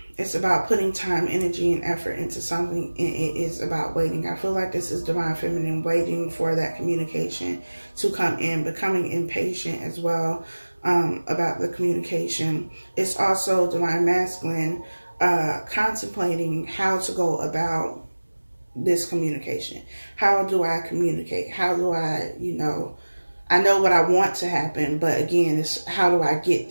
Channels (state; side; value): inverted; both; correlation -1.00